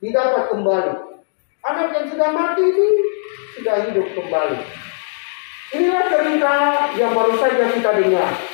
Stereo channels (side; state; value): right; silent; digital silence